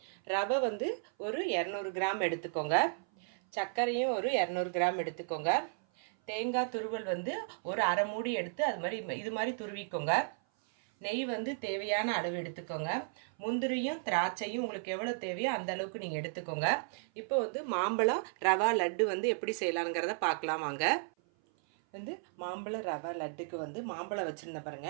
ரவை வந்து ஒரு 200 கிராம் எடுத்துக்கோங்க. சர்க்கரையும் ஒரு 200 கிராம் எடுத்துக்கோங்க. தேங்காய் துருவல் வந்து ஒரு அரை மூடி எடுத்து இது மாதிரி துருவிக்கோங்க. நெய் வந்து தேவையான அளவு எடுத்துக்கோங்க. முந்திரியும் திராட்சையும் உங்களுக்கு எவ்வளோ தேவையோ அந்த அளவுக்கு நீங்கள் எடுத்துக்கோங்க. இப்போ வந்து மாம்பழம் ரவா லட்டு வந்து எப்படி செய்யலாங்கிறத பார்க்கலாம் வாங்க. வந்து மாம்பழ ரவா லட்டுக்கு வந்து மாம்பழம் வச்சுருந்தேன்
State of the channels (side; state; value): left; silent; 55 dB below the other